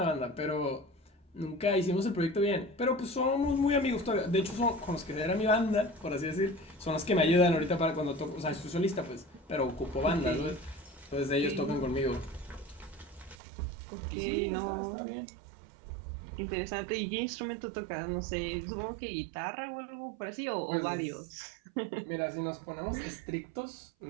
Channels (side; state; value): left; drops out; at 13.4 s